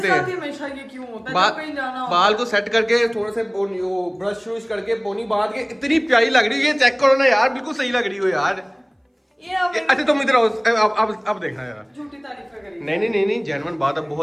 हैं। हमेशा ये क्यों होता है जब कहीं जाना हो? बाल को सेट करके थोड़े से ब्रश व्रश करके पोनी बांध के इतनी प्यारी लग रही है। ये चेक करो ना यार, बिल्कुल सही लग रही हो यार। अच्छा तुम इधर आओ, अब देखना यार। झूठी तारीफ करी। नहीं जेन्युइन बात, अब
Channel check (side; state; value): both; identical; correlation 1.00